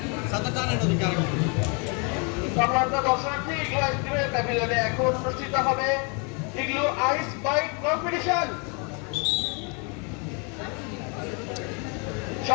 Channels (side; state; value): right; quieter; 34.5 dB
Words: সম্মানিত দর্শনার্থী, ইগলু আইসক্রিমের প্যাভিলিয়নে এখন অনুষ্ঠিত হবে ইগলু আইস বাইট কম্পিটিশন।